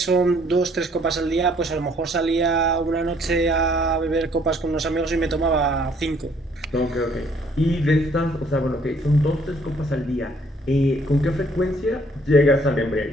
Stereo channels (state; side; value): normal; both; correlation 0.62